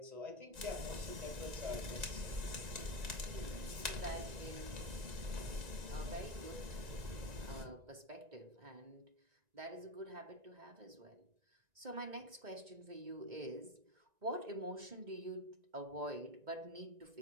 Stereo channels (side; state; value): left; late; 1.9 ms